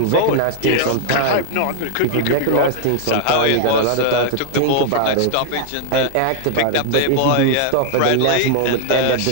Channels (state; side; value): different; both; correlation -0.01